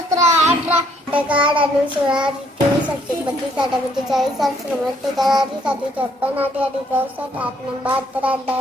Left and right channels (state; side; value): normal; both; correlation 0.67